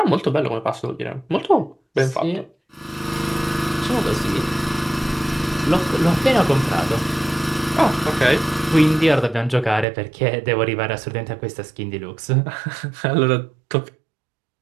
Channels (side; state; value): left; drops out; at 9.9 s